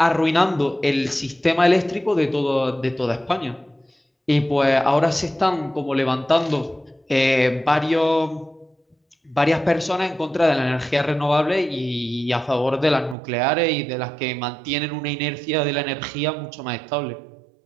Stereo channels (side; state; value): left; drops out; at 13.2 s